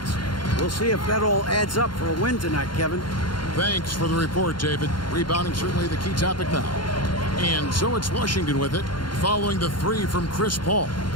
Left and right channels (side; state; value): right; late; 0.72 ms